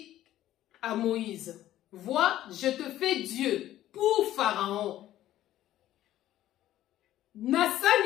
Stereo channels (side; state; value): right; quieter; 13.4 dB